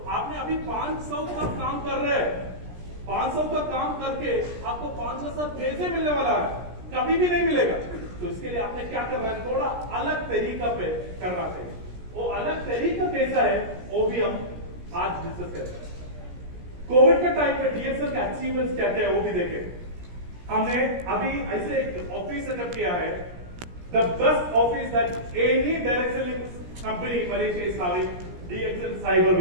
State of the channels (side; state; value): left; late; 17 ms